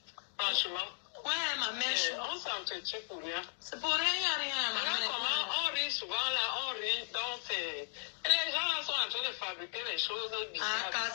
Franchement. Ouais, ma mère. On s'entretient pour rien. C'est pour rien, ma mère. Comment on rit souvent là, on rit, donc c'est. Et les gens là sont en train de fabriquer les choses bizarres. Ah, quand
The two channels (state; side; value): silent; right; digital silence